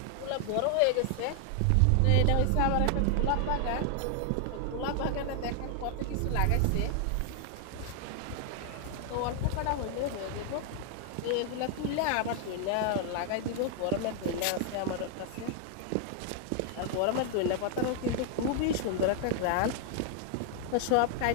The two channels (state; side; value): different; both; correlation 0.00